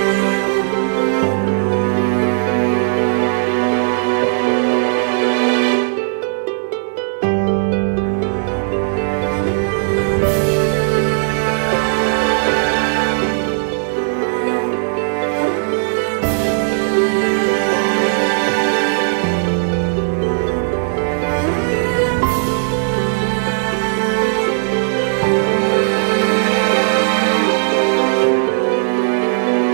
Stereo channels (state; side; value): silent; left; digital silence